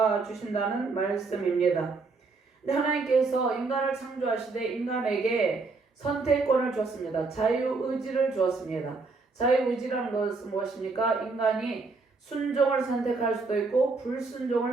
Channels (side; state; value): left; quieter; 4.0 dB